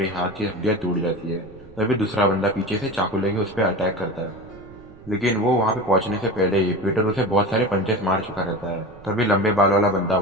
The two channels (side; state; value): right; noise; rumble, 21 dB below the sound